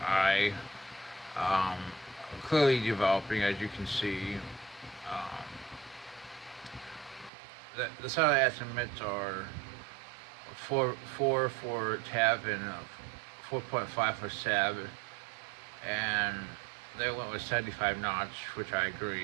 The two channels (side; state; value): left; drops out; at 7.3 s